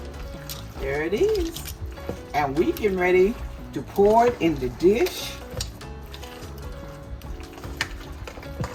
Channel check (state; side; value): identical; both; correlation 1.00